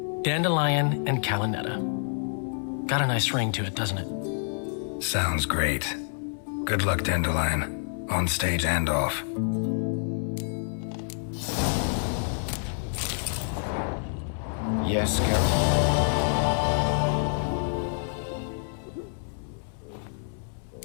Dandelion and Calinetta. Got a nice ring to it, doesn't it? Sounds great. Good luck, Dandelion. On stage and off. Yes, Geralt?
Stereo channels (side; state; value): right; silent; 60 dB below the other